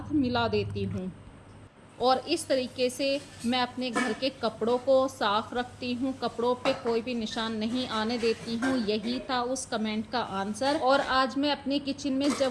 मिला देती हूँ। और इस तरीके से मैं अपने घर के कपड़ों को साफ़ रखती हूँ, कपड़ों पे कोई भी निशान नहीं आने देती हूँ। यही था उस कमेंट का आंसर। और आज मैं अपनी किचन में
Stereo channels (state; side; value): identical; both; correlation 1.00